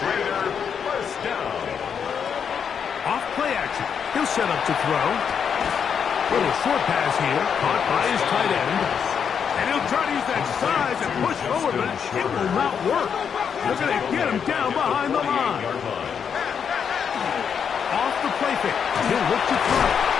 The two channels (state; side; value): quieter; right; 7.2 dB